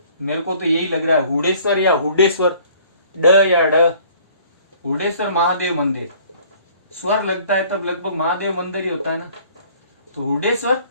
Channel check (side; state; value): both; inverted; correlation -0.55